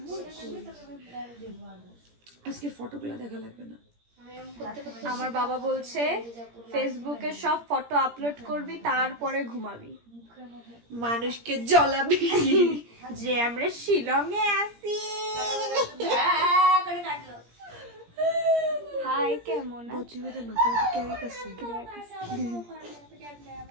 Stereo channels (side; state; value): left; late; 17 ms